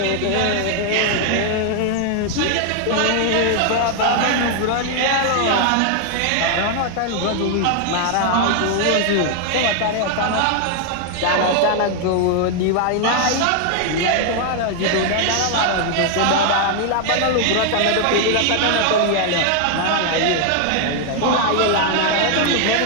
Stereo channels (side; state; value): both; different; correlation 0.00